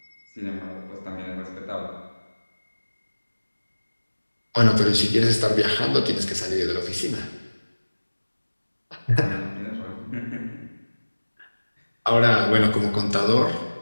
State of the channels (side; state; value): both; inverted; correlation -1.00